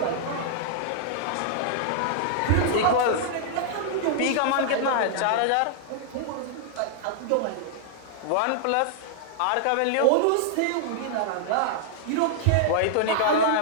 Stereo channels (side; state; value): both; different; correlation -0.01